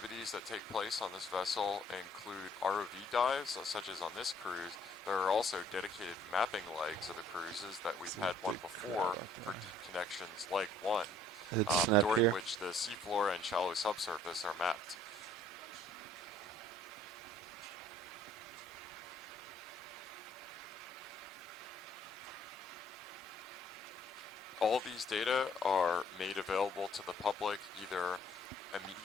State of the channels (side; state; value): both; normal; correlation 0.60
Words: that take place on this vessel include ROV dives, such as on this cruise. There are also dedicated mapping legs of the cruises that we've had one before for deep connections, leg 1, It's not during here. which the seafloor and shallow subsurface are mapped. All these data are made available to the public either